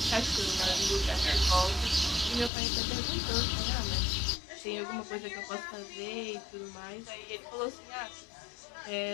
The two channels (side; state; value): right; drops out; at 2.5 s